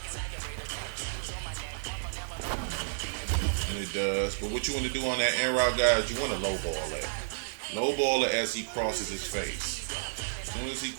And it does. But what you want to do on that in route, guys, you want to lowball that. Lowball it as he crosses his face. As soon as he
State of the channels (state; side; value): silent; left; digital silence